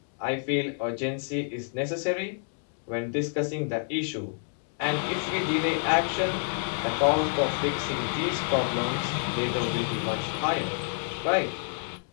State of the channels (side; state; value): right; silent; digital silence